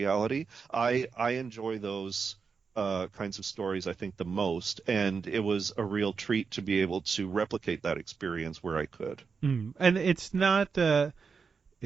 I enjoy those kinds of stories, I think, the most, and it was a real treat to be able to replicate that experience where I could. Mm. And it's not the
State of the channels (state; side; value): quieter; left; 5.4 dB